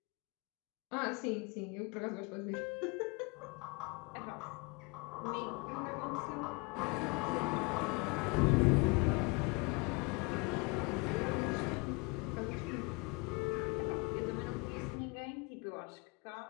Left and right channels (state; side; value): quieter; right; 28.4 dB